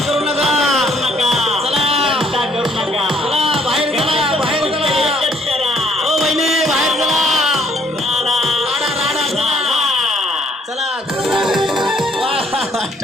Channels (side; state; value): both; normal; correlation 0.65